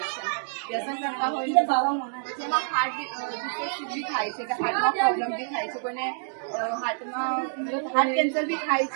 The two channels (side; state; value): left; silent; digital silence